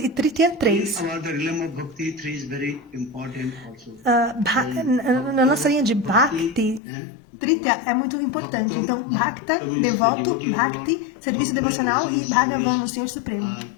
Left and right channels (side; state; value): right; drops out; at 6.8 s